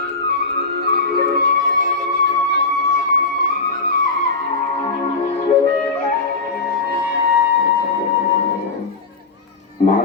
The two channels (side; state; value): right; quieter; 4.0 dB